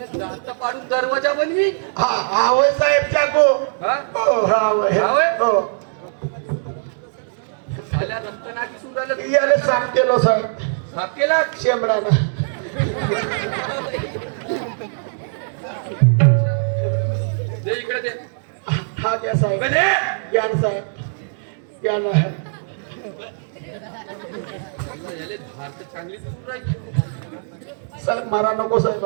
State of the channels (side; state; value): left; silent; digital silence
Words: पाडून दरवाजा बनवी. हा होय साहेब चाको. हो हा हो झाल्या रक्तना दिसून राहिलं. याला साफ केलो साहेब. साफ केला शेंबडानं. दे इकडे दे. हा द्या साहेब. या ना साहेब या ना. याले धार तर चांगली दिसून राहिली. साहेब मारा नको साहेब